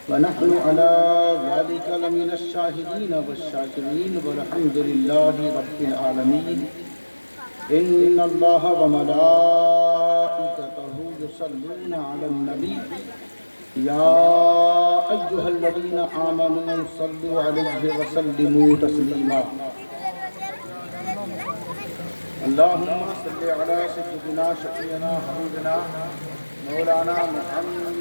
ونحن على ذلك لمن الشاهدين والشاكرين والحمد لله رب العالمين إن الله وملائكته يصلون على النبي يا أيها الذين آمنوا صلوا عليه وسلموا تسليما اللهم صل على سيدنا شفيعنا حبيبنا مولانا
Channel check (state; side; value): inverted; both; correlation -1.00